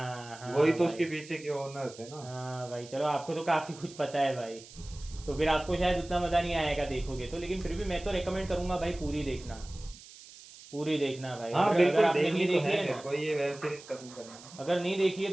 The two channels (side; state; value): right; noise; hiss, 19 dB below the sound